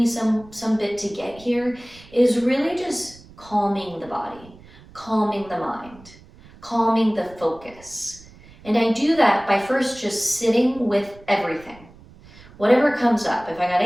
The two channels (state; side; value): noise; right; rumble, 22 dB below the sound